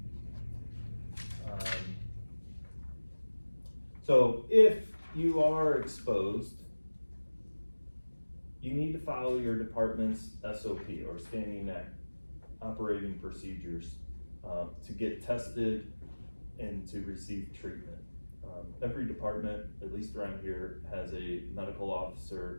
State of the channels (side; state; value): both; inverted; correlation -1.00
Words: So if you are exposed, you need to follow your department's SOP or standing operating procedures to get tested and to receive treatment. Every department, at least around here, has a medical